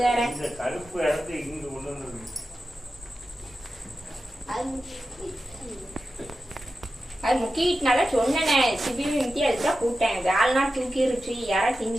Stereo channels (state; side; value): normal; both; correlation 0.92